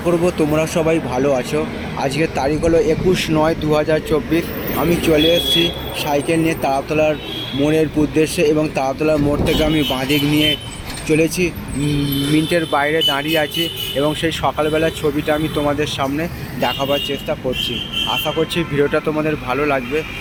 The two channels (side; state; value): both; identical; correlation 1.00